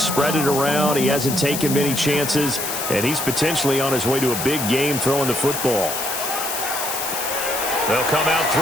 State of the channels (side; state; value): left; noise; hiss, 4 dB below the sound